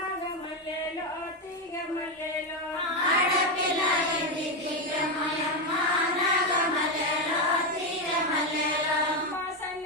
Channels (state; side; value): normal; both; correlation 0.09